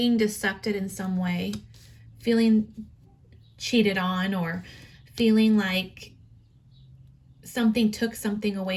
decepted in some way, feeling cheated on, or feeling like something took something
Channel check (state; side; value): identical; both; correlation 1.00